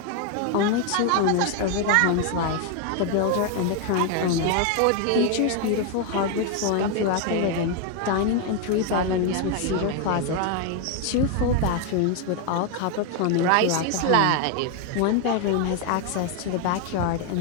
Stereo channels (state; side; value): different; both; correlation 0.01